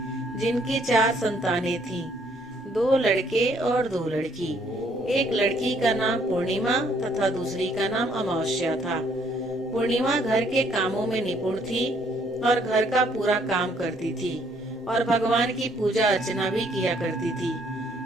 जिनकी 4 संतानें थीं, 2 लड़के और 2 लड़की। एक लड़की का नाम पूर्णिमा तथा दूसरी का नाम अमावस्या था। पूर्णिमा घर के कामों में निपुण थी और घर का पूरा काम करती थी और भगवान की पूजा अर्चना भी किया करती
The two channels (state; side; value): normal; both; correlation 0.66